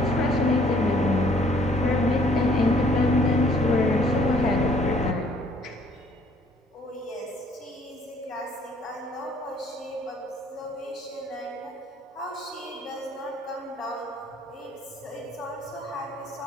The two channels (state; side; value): normal; both; correlation 0.60